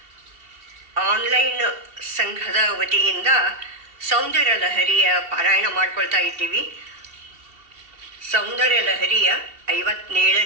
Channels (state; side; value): late; left; 2.7 ms